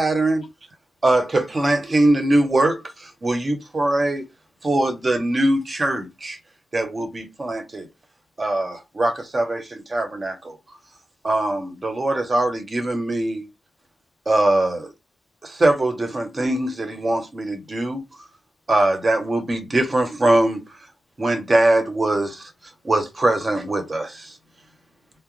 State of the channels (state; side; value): normal; both; correlation 0.94